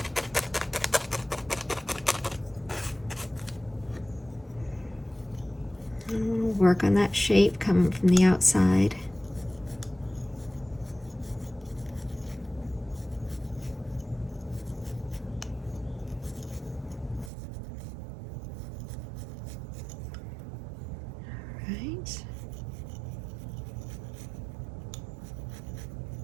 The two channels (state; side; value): drops out; left; at 17.3 s